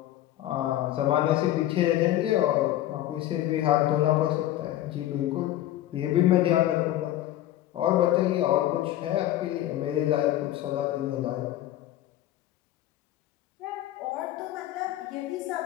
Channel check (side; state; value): right; quieter; 13.8 dB